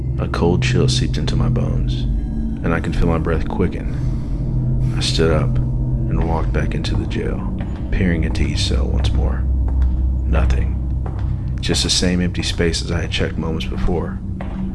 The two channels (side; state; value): both; identical; correlation 1.00